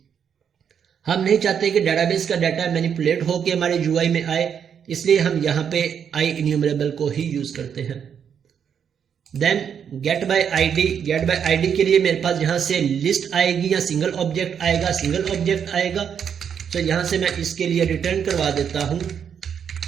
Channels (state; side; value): quieter; left; 7.8 dB